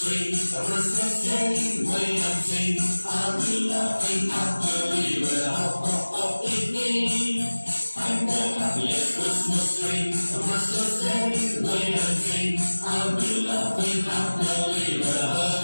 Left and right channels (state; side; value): inverted; both; correlation -1.00